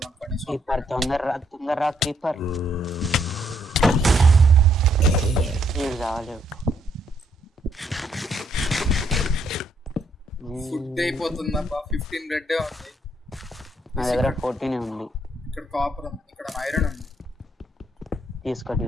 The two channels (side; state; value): both; normal; correlation 0.71